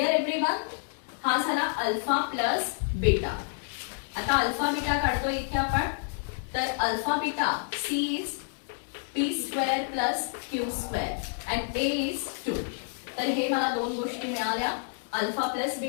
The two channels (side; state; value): right; silent; digital silence